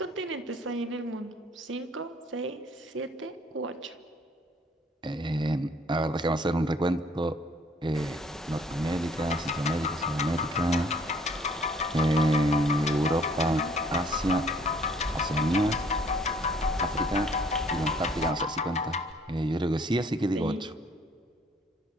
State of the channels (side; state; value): both; normal; correlation 0.60